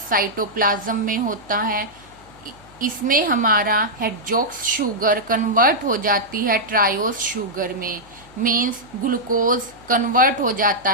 साइटोप्लाज्म में होता है। इसमें हमारा हेक्सोक्स शुगर कन्वर्ट हो जाती है ट्रायोस शुगर में, मीन्स ग्लूकोज कन्वर्ट हो जाता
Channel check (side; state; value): left; noise; hum, 26 dB below the sound